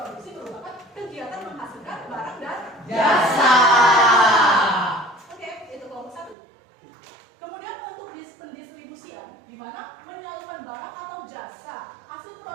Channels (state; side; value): drops out; left; at 6.4 s